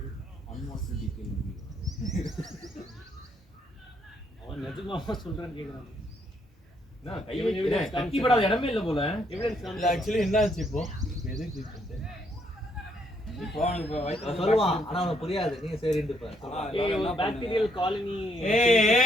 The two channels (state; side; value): normal; both; correlation 0.72